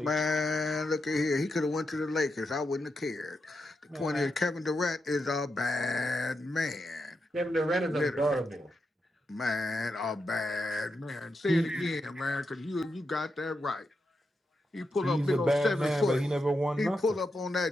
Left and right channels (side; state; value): both; normal; correlation 0.86